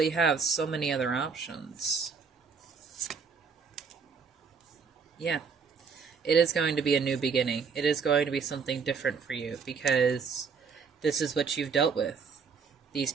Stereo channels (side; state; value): left; quieter; 5.6 dB